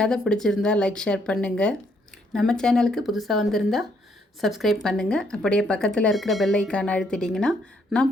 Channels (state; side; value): normal; both; correlation 0.71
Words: கதை பிடிச்சிருந்தா லைக் ஷேர் பண்ணுங்கள். நம்ம சேனலுக்கு புதுசாக வந்திருந்தா சப்ஸ்கிரைப் பண்ணுங்கள். அப்படியே பக்கத்தில் இருக்கிற பெல் ஐக்கானை அழுத்திட்டிங்கன்னா நான்